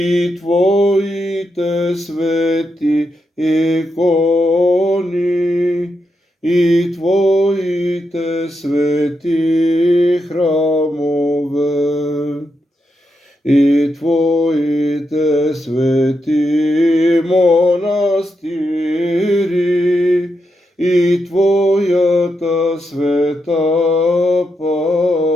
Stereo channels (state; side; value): normal; both; correlation 0.84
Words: Твоите свети икони, и Твоите свети храмове, и Твоите свети монастири, и Твојата света